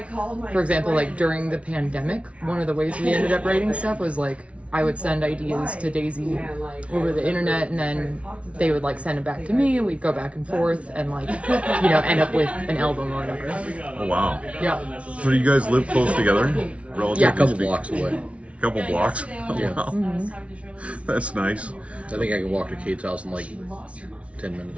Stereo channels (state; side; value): late; left; 0.063 ms